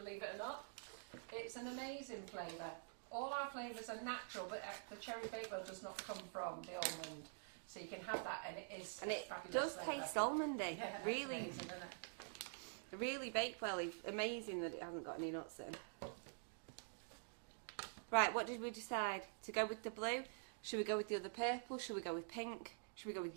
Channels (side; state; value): left; silent; digital silence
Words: it or not. It's an amazing flavour. All our flavours are natural, but the cherry bakewell does not come from the almond. So you can have that, and it is a fabulous flavour. It does taste almondy. Yeah, that's really, amazing, isn't it? really bakewell. Amazing that it hasn't got any nuts in. Right, what did we decide? To go with the blue? Should we go with the other purple? Should we go with pink? Should we go